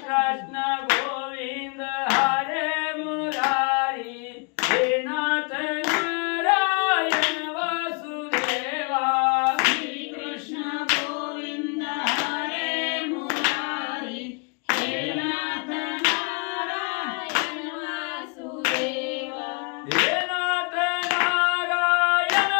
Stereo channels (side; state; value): right; quieter; 34.5 dB